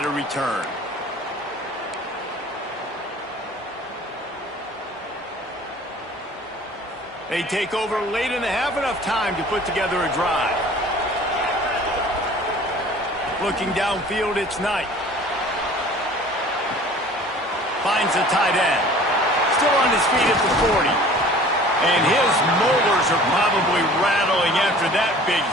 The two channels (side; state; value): both; normal; correlation 0.47